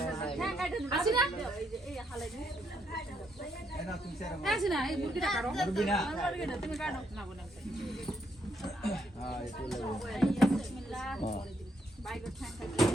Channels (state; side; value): normal; both; correlation 0.75